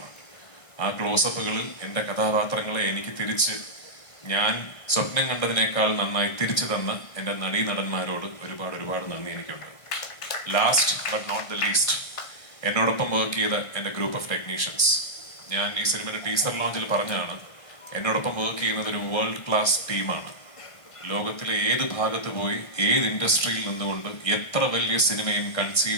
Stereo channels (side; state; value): right; late; 1.5 ms